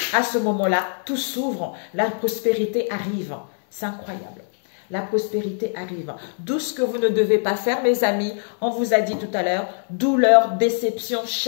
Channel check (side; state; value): right; silent; digital silence